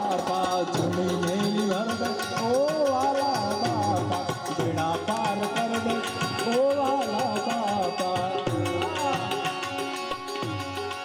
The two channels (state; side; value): identical; both; correlation 1.00